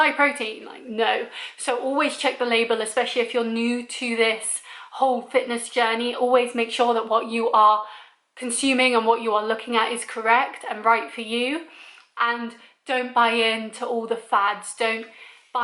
protein. Like, no. So always check the label, especially if you're new to this whole fitness journey. Always make sure that what you are consuming and what you are looking at is correct and right for you, and don't buy into all the fads. Don't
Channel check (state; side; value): identical; both; correlation 1.00